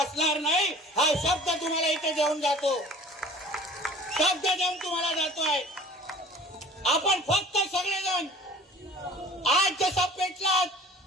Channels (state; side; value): normal; both; correlation 0.46